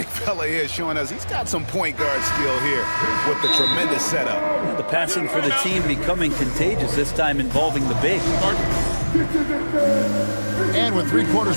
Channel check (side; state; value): both; inverted; correlation -1.00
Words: fella here showing us he's got some point guard skill here with the tremendous setup. The passing for the team becoming contagious, this time involving the big. And with 3 quarters